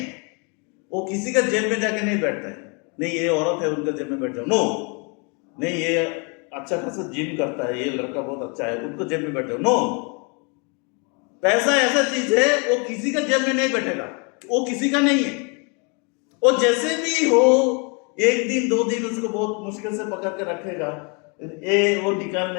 वो किसी का जेब में जाके नहीं बैठता है, नहीं ये औरत है उनका जेब में बैठ जाओ, नो, नहीं ये अच्छा खासा जिम करता है, ये लड़का बहुत अच्छा है, उनको जेब में बैठ जाओ, नो। पैसा ऐसा चीज है, वो किसी का जेब में नहीं बैठेगा, वो किसी का नहीं है। वो जैसे भी हो, एक दिन 2 दिन उसको बहुत मुश्किल से पकड़ के रखेगा, वो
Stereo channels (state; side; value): quieter; right; 34.1 dB